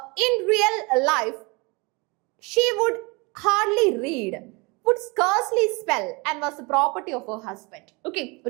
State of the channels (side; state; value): left; quieter; 27.7 dB